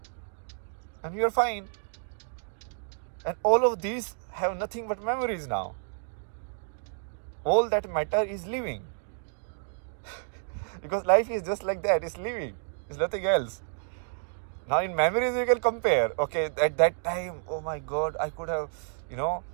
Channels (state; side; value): silent; left; digital silence